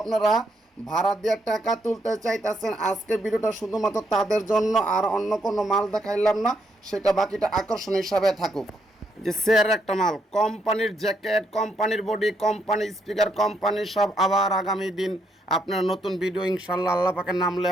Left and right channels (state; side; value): normal; both; correlation 0.76